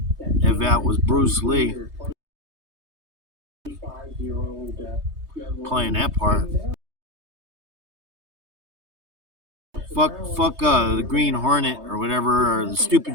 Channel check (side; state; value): left; late; 3.2 ms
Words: if that was Bruce Lee playing that part. Fuck the Green Hornet or whatever, or the